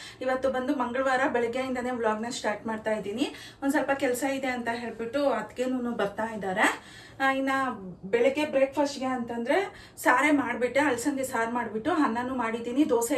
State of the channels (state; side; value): identical; both; correlation 1.00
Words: ಇವತ್ತು ಬಂದು ಮಂಗಳವಾರ ಬೆಳಗ್ಗೆಯಿಂದನೇ ವ್ಲಾಗ್ನ ಸ್ಟಾರ್ಟ್ ಮಾಡ್ತಾ ಇದ್ದೀನಿ. ಒಂದು ಸ್ವಲ್ಪ ಕೆಲಸ ಇದೆ ಅಂತ ಹೇಳ್ಬಿಟ್ಟು ಅದಕ್ಕೇನು ಬರ್ತಾ ಇದ್ದಾರೆ. ಇನ್ನು ಬೆಳಗ್ಗೆ ಬ್ರೇಕ್ಫಾಸ್ಟ್ಗೆ ಅಂತಂದರೆ ಸಾರೇ ಮಾಡಿಬಿಟ್ಟೆ, ಅಲಸಂದೆ ಸಾರು ಮಾಡಿಬಿಟ್ಟು ಅನ್ನನೂ ಮಾಡಿದ್ದೀನಿ. ದೋಸೆ